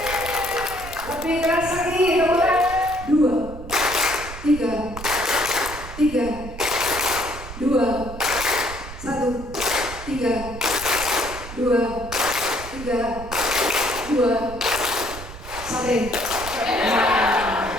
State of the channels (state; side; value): noise; right; rumble, 12 dB below the sound